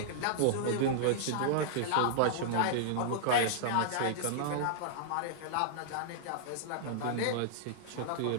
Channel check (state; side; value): different; both; correlation -0.01